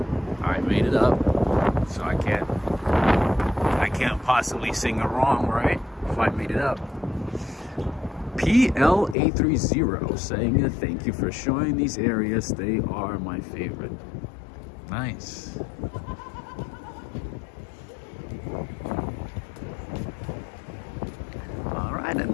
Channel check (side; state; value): right; drops out; at 9.2 s